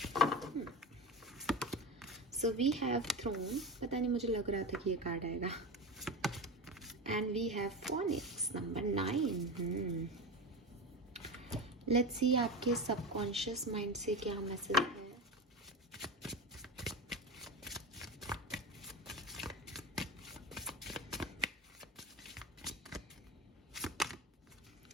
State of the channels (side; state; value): both; normal; correlation 0.24